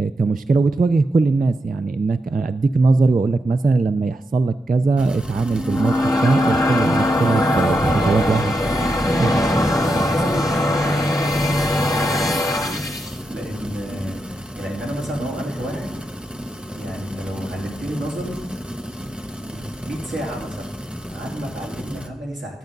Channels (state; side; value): normal; both; correlation 0.85